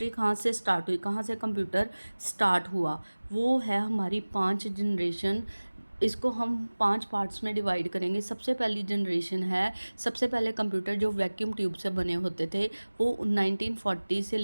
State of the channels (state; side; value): inverted; both; correlation -1.00